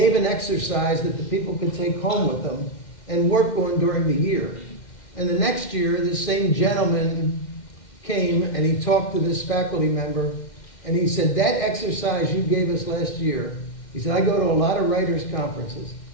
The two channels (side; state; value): right; late; 2.1 ms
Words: an exercise that the people could take home with them and work on during the year. And the next year, this same gentleman came and he talked to this faculty member, and he said, that exercise you gave us last year, he said, I go to a lot of writers' conferences.